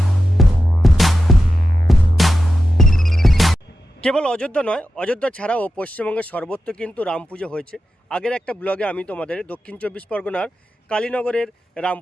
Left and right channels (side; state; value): both; normal; correlation 0.90